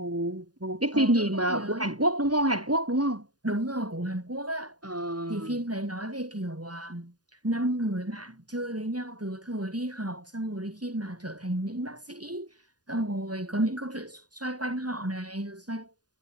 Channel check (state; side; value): late; left; 0.69 ms